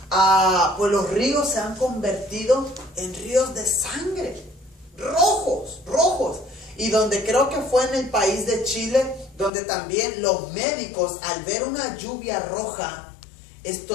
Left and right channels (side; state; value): right; drops out; at 9.5 s